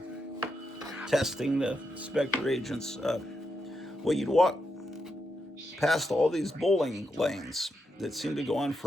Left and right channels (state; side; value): normal; both; correlation 0.83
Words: of testing the Spectre agents. You'd walk past all these bowling lanes that seemed to go on